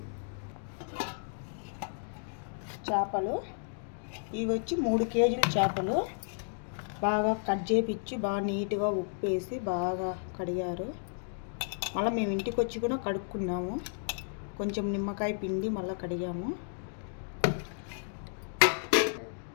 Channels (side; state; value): right; silent; digital silence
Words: చేపలు ఇవి వచ్చి 3 కేజీల చేపలు బాగా కట్ చేపించి బాగా నీట్గా ఉప్పు వేసి బాగా కడిగారు. మళ్ళీ మేము ఇంటికి వచ్చి కూడా కడుక్కున్నాము. కొంచెం నిమ్మకాయ పిండి మళ్ళీ కడిగాము.